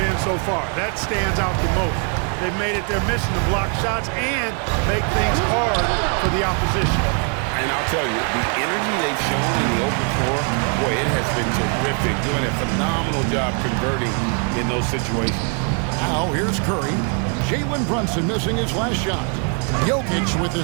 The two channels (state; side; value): quieter; left; 39.3 dB